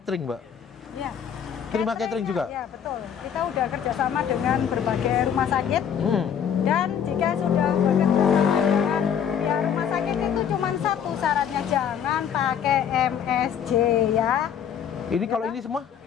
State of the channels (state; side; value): quieter; right; 8.3 dB